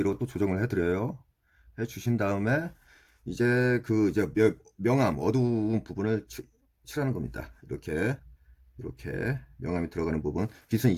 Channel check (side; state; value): both; identical; correlation 1.00